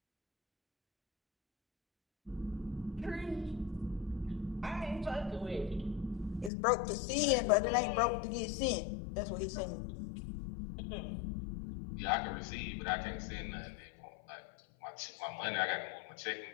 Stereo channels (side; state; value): right; drops out; at 6.5 s